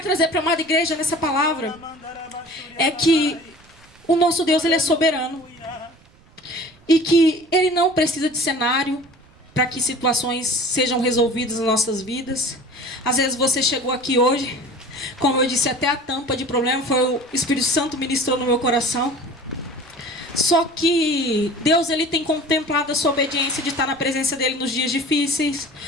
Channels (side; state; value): right; noise; rumble, 28 dB below the sound